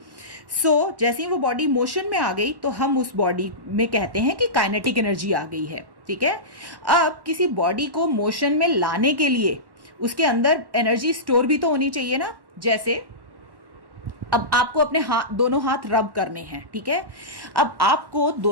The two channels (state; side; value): late; left; 1.1 ms